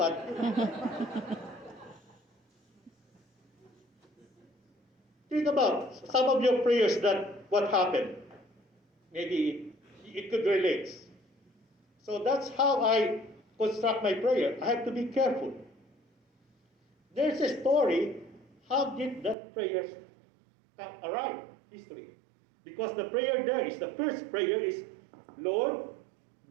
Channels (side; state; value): left; drops out; at 19.4 s